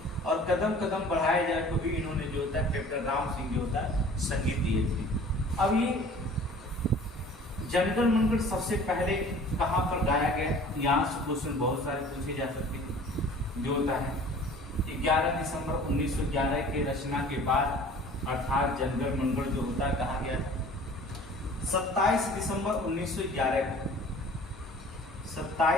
और कदम कदम बढ़ाए जाए तो भी इन्होंने जो होता है कैप्टन राम सिंह जो होता है संगीत दिए थे। अब ये जनगण मंगल सबसे पहले कहाँ पर गाया गया, यहाँ से क्वेश्चन बहुत सारे पूछे जा सकते हैं। जो होता है 11 दिसंबर 1911 के रचना के बाद अर्थात जनगण मंगल जो होता है कहा गया था 27 दिसंबर 1911 को,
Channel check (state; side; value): normal; both; correlation 0.47